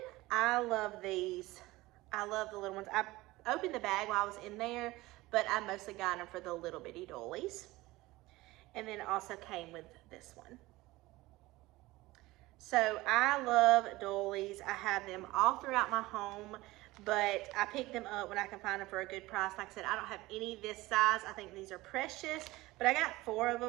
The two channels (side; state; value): left; quieter; 19.4 dB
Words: I love these. I love the little ones. I opened the bag while I was in there, but I mostly got them for the little bitty doilies. And then it also came with this one. So I love doilies. I have them all throughout my home, but I pick them up when I can find them for a good price. Like I said, I don't have any this size. I think these are precious, but I got 4 of